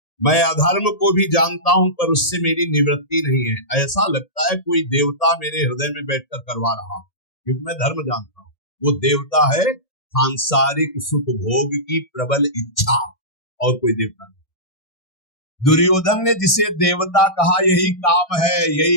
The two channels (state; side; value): late; right; 1.7 ms